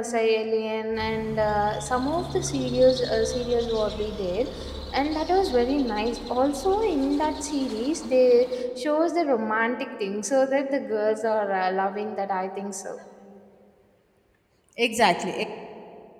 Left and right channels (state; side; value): identical; both; correlation 1.00